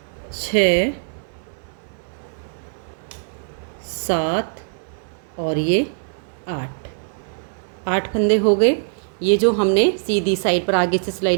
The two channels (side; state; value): left; silent; 64 dB below the other